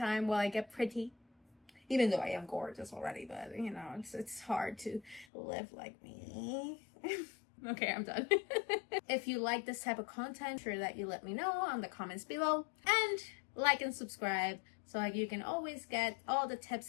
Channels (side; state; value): right; drops out; at 5.2 s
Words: while I get pretty, even though I am gorgeous already, but you know, it's hard to live like me. Okay, I'm done. If you like this type of content, sure that you let me know on the comments below, and like and subscribe so you can always get all the